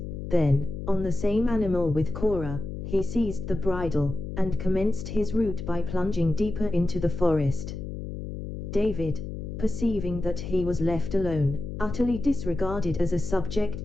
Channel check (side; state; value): left; noise; hum, 7 dB below the sound